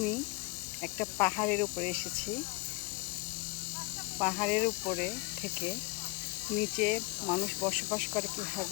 একটা পাহাড়ের উপরে এসেছি। পাহাড়ের উপরে থেকে নিচে মানুষ বসবাস করে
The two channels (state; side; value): quieter; right; 25.4 dB